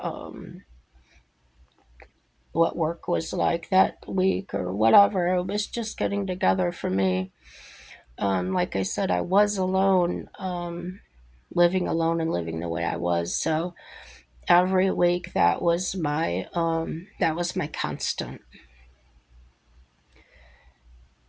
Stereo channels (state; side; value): identical; both; correlation 1.00